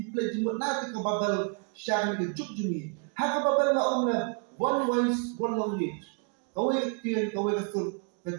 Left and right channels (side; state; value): left; quieter; 38.5 dB